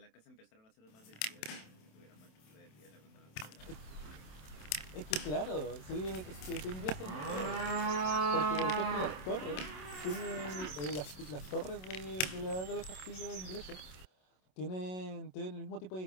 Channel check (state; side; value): late; right; 27 ms